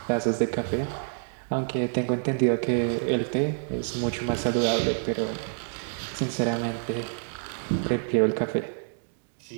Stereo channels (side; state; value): left; silent; 60 dB below the other